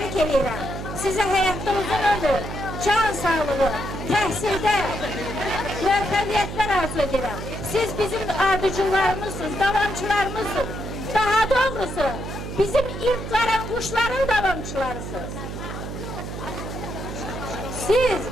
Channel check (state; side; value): noise; right; hum, 7 dB below the sound